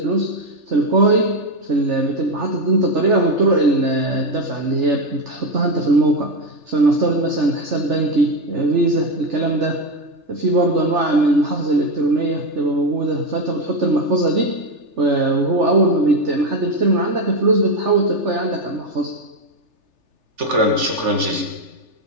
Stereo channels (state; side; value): late; left; 3.4 ms